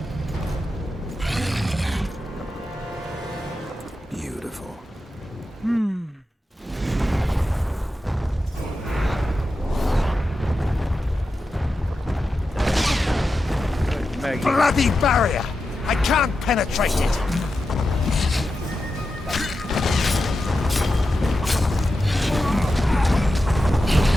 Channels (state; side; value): normal; both; correlation 0.90